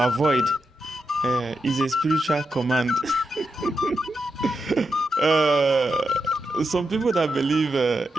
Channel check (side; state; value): both; normal; correlation 0.86